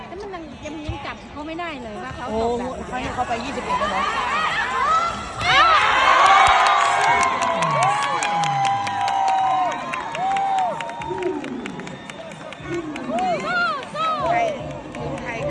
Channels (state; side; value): identical; both; correlation 1.00